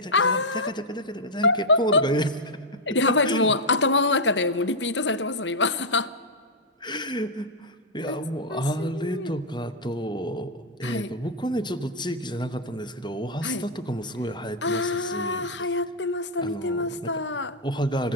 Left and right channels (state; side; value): normal; both; correlation -0.03